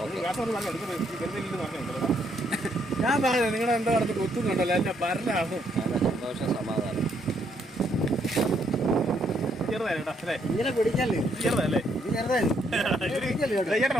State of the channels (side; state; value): both; normal; correlation 0.72